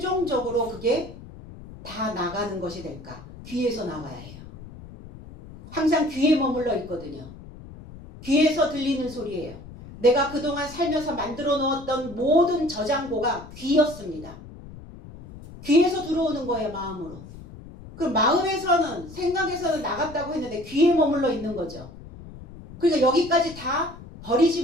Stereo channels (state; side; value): noise; left; rumble, 16 dB below the sound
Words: 그게 다 나가는 것이 될까? 귀에서 나가야 해요. 항상 귀에 머물러 있거든요. 귀에서 들리는 소리예요. 내가 그동안 살면서 만들어 놓았던 모든 저장고가 귀였습니다. 귀에서 들어오는 거예요, 마음으로. 그럼 마음에서는, 생각에서는 나갔다고 했는데 귀에 머물러 있는 거죠. 그러니까 여기까지 다